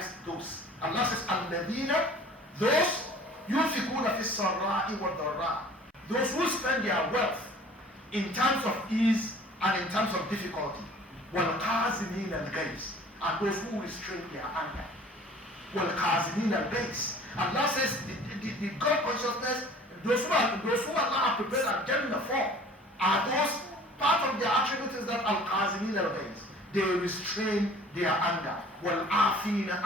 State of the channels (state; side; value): normal; both; correlation 0.48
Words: those. Allah says, Al-Ladina, those yunfikuna fi sarra'i wa dharra, those who spend their wealth in times of ease and in times of difficulty. وَالْقَازِمِينَ الْغَيْظَ, and those who restrain their anger. وَالْقَازِمِينَ الْغَيْظَ. Allah says the God consciousness, those who Allah has prepared Al-Jannah for, are those, part of their attribute is that Al-Qazimin al-Ghayz, they restrain their anger. وَالْعَافِينَ